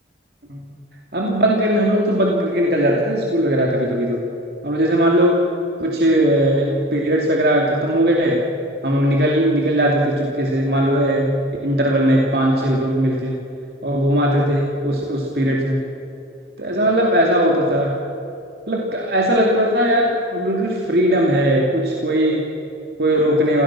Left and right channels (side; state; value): both; normal; correlation 0.34